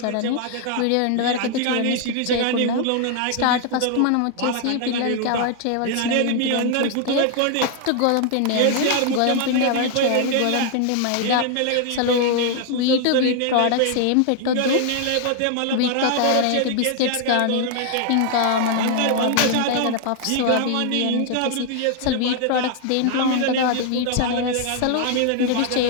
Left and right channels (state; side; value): different; both; correlation 0.00